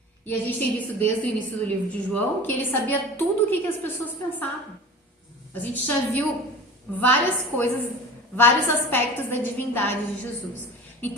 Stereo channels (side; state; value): both; normal; correlation 0.37